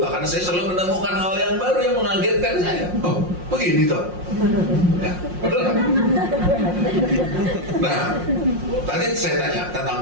karena saya selalu menemukan hal yang baru yang mengagetkan saya. Oh, begini toh. Ya, betul kan? Nah, tadi saya tanya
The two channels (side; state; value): left; late; 5.6 ms